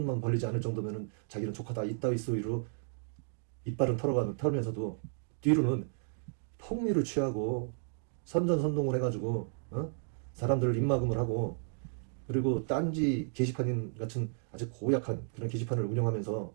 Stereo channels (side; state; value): left; silent; digital silence